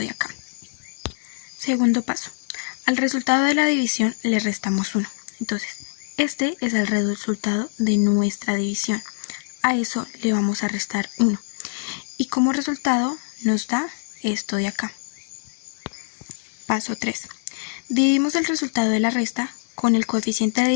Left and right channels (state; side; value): silent; right; digital silence